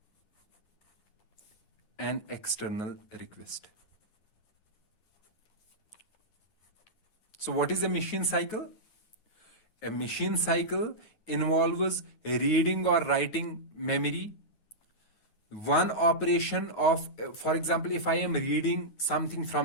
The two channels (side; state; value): right; late; 9.4 ms